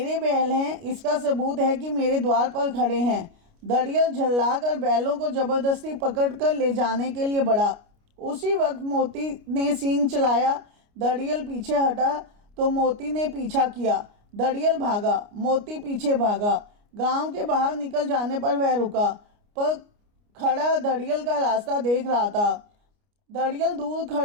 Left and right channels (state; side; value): late; left; 29 ms